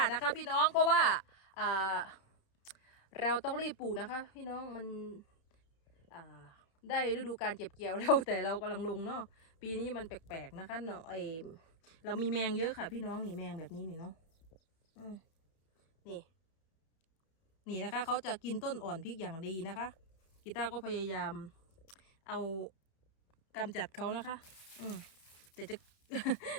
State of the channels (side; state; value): right; late; 31 ms